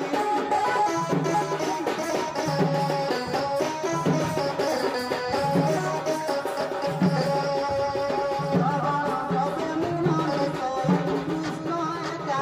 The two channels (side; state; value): both; identical; correlation 1.00